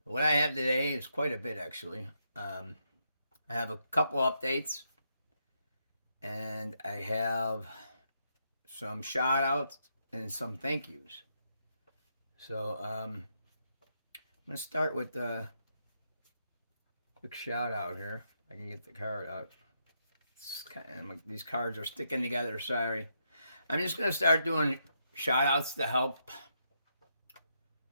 What I have today is quite a bit, actually. I have a couple updates, and I have some shout outs and some thank yous. So I'm going to start with a quick shout out here. I can get the card out. These cards are sticking together, sorry. I'm just going to start doing shout outs to help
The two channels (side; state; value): both; inverted; correlation -0.80